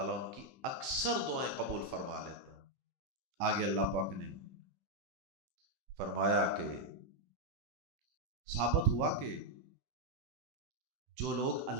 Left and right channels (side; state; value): left; late; 16 ms